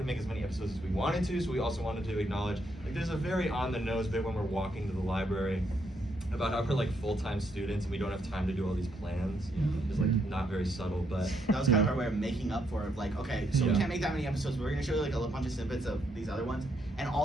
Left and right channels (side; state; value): both; normal; correlation 0.75